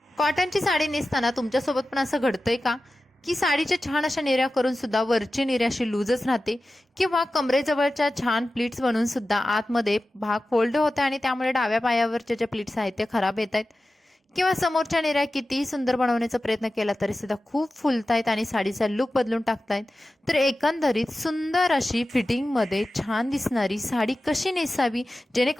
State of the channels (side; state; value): both; normal; correlation 0.94